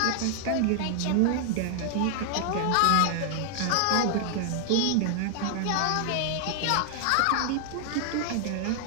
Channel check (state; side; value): different; both; correlation -0.01